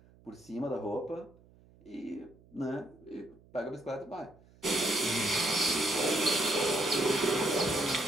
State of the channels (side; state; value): right; noise; hum, 27 dB below the sound